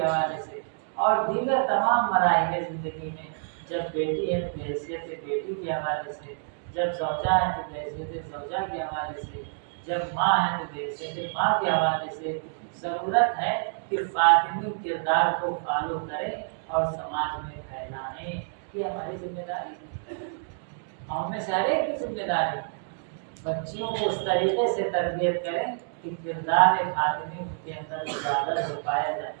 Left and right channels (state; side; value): silent; left; digital silence